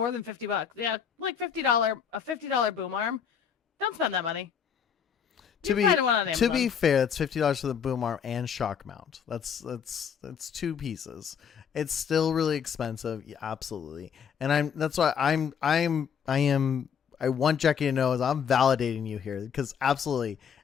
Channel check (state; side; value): quieter; right; 7.4 dB